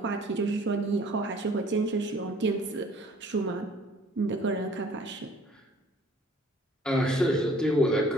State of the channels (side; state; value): both; normal; correlation 0.55